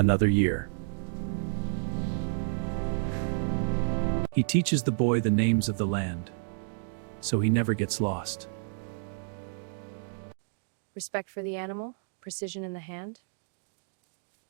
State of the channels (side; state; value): left; silent; digital silence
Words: year. He teaches the boy the names of the land, so he never gets lost. Respect for the animal, precision in the hand.